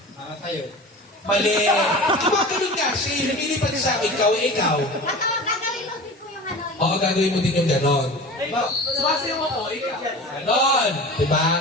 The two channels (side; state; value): both; normal; correlation 0.36